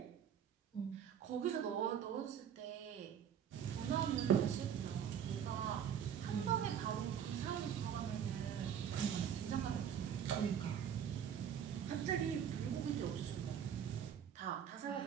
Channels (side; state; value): left; quieter; 8.7 dB